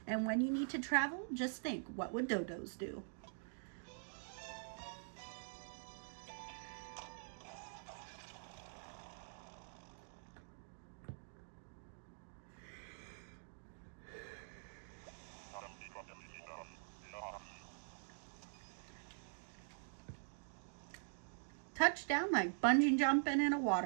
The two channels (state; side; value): silent; left; digital silence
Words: And when you need to travel, just think, what would dodos do? Touchdown like bungee jumping in a